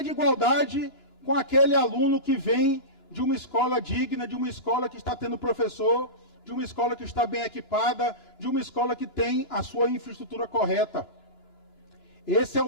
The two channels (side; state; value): right; late; 2.9 ms